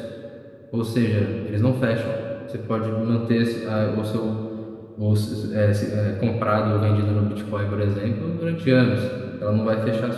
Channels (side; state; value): both; identical; correlation 1.00